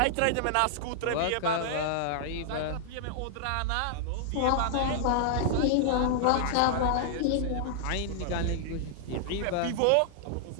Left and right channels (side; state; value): both; different; correlation -0.01